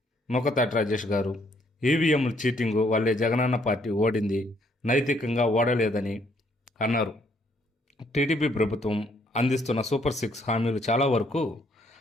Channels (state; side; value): normal; both; correlation 0.68